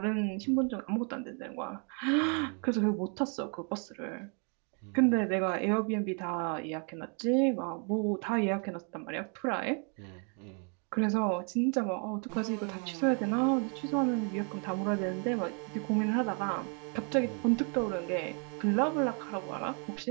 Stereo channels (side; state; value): left; quieter; 38.8 dB